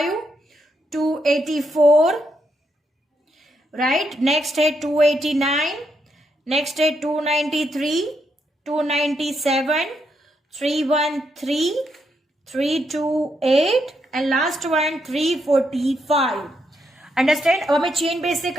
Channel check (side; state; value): both; normal; correlation 0.79